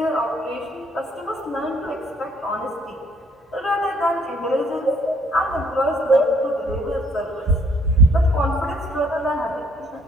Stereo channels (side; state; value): both; normal; correlation 0.63